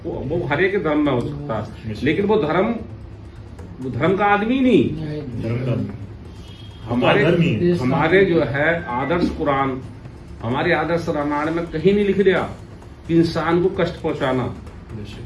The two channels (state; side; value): identical; both; correlation 1.00